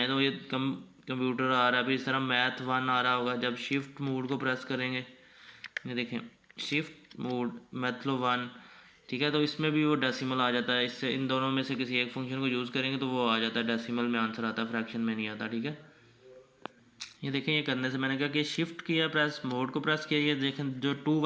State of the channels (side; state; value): both; identical; correlation 1.00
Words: तो ये कंप्यूटर आ रहा है, फिर इस तरह मैथ 1 आ रहा होगा। जब शिफ्ट मोड को प्रेस करेंगे, ये देखें शिफ्ट मोड मतलब 1, ठीक है, तो इसमें भी वो डेसिमल आ जाता है। इससे इन दोनों में से किसी एक फंक्शन को यूज़ करेंगे तो वो आ जाता है डेसिमल में, आंसर आता है, फ्रैक्शन में नहीं आता, ठीक है। ये देखें, ये करने से मैंने कहा कि शिफ्ट किया, प्रेस मोड को प्रेस किया, ये देखें जो 2